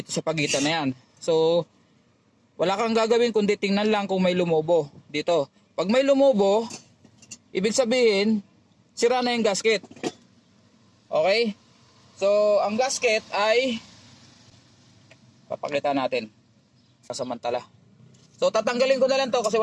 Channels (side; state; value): both; identical; correlation 1.00